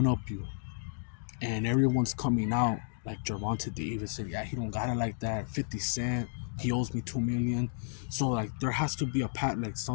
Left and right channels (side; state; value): right; silent; digital silence